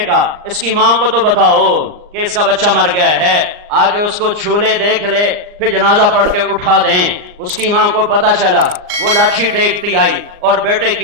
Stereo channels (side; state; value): left; late; 39 ms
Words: کہا اس کی ماں کو تو بتاؤ کہ اس کا بچہ مر گیا ہے، آگے اس کو چھولے دیکھ لے، پھر جنازہ پڑھ کے اٹھا دیں۔ اس کی ماں کو پتا چلا، وہ لاٹھی ٹیکتی آئی اور بیٹے